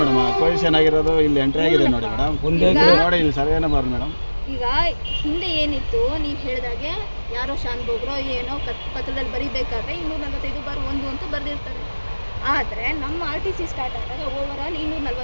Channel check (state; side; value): inverted; both; correlation -1.00